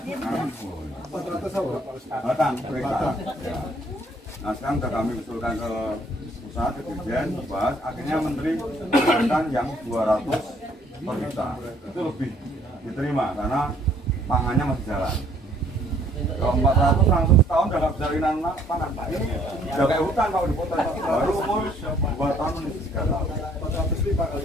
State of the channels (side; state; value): both; normal; correlation 0.62